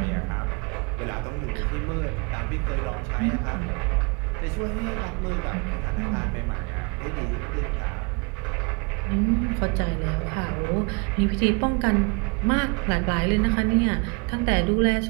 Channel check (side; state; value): left; quieter; 32.3 dB